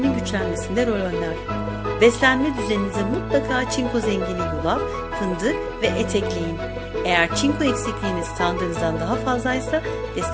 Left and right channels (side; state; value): both; identical; correlation 1.00